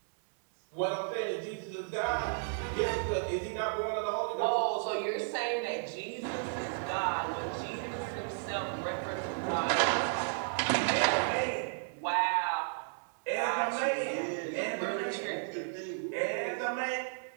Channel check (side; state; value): left; silent; digital silence